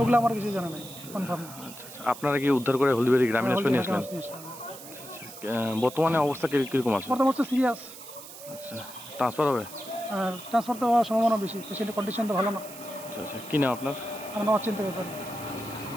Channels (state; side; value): noise; right; hiss, 15 dB below the sound